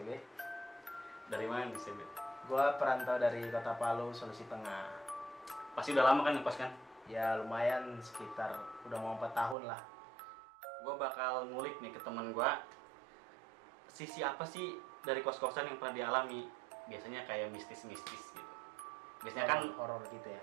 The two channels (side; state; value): left; drops out; at 9.6 s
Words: Dari mana nih Sebe? Gue perantau dari Kota Palu, Sulawesi Tengah. Pasti udah lama kan ngekos kan? Ya lumayan, sekitar udah mau 4 tahun lah. Gue bakal ngulik nih ke temen gue, sisi apa sih dari kos-kosan yang pernah dialami. Biasanya kayak mistis-mistis gitu. Biasanya kan horor gitu ya.